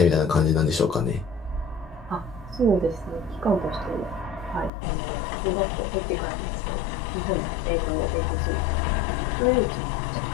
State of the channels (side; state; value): right; drops out; at 4.7 s